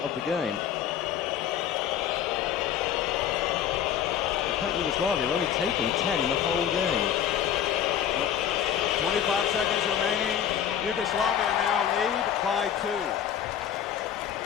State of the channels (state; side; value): quieter; right; 9.6 dB